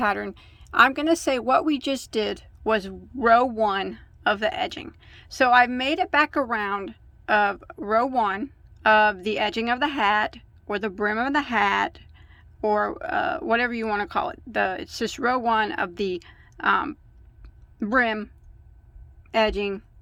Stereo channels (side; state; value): both; identical; correlation 1.00